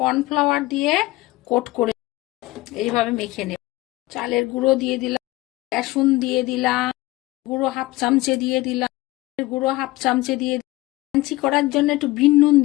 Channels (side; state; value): right; quieter; 19.2 dB